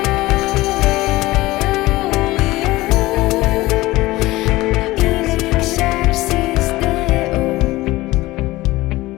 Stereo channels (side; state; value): right; quieter; 18.9 dB